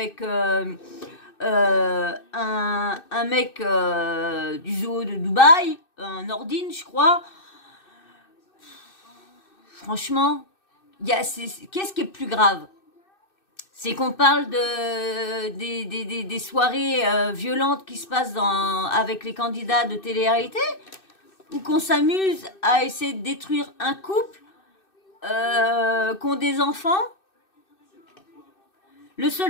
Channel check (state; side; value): late; right; 2.6 ms